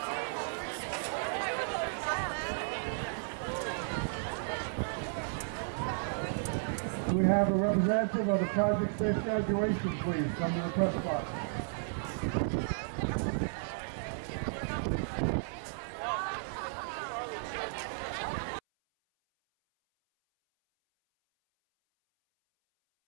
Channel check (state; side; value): silent; left; 55 dB below the other